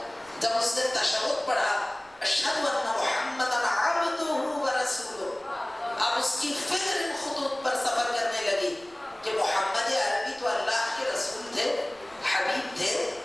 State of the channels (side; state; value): right; noise; rumble, 29 dB below the sound